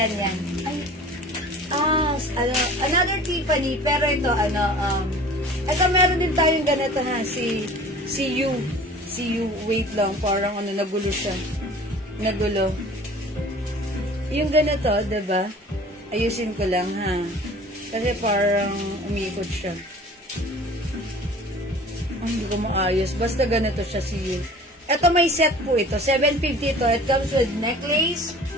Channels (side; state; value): both; normal; correlation 0.45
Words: yan. Ay. Another Tiffany, pero ito, ito meron din tayong ganito ha. Si You. Wait lang. Parang nagulo siya. Nagulo. Yung ganito, diba? Ayusin ko lang, ha? Kasi parang umiikot siya. Hindi ko maayos. Basta ganito siya si You. Ito may set po ito. 750 ito. It comes with necklace,